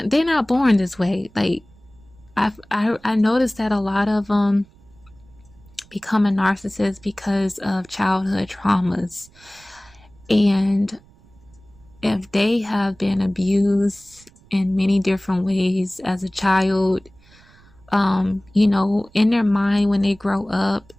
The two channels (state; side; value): noise; right; rumble, 27 dB below the sound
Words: not born this way. Like I noticed that a lot of them become a narcissist because of childhood traumas. And if they have been abused in many different ways as a child, in their mind when they grow up,